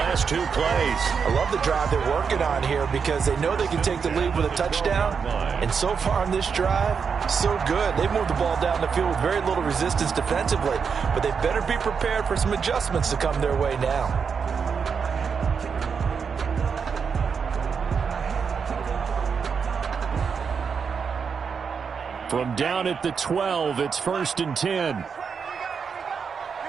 2 plays. I love the drive they're working on here because they know they can take the lead with a touchdown. And so far on this drive, so good. They've moved the ball down the field with very little resistance defensively. But they better be prepared for some adjustments to come their way now. From down at the 12, it's 1st and 10.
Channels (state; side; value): quieter; left; 6.1 dB